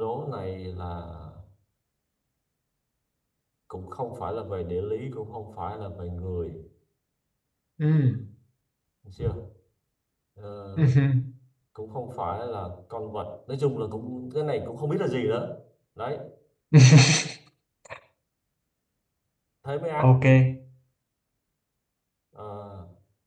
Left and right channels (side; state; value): both; identical; correlation 1.00